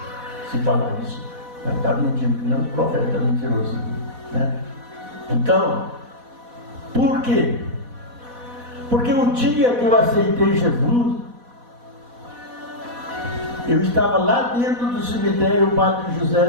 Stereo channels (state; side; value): late; left; 4.1 ms